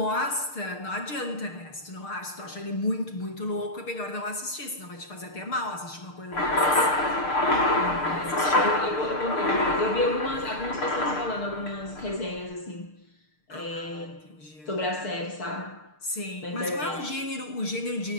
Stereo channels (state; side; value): late; right; 6.6 ms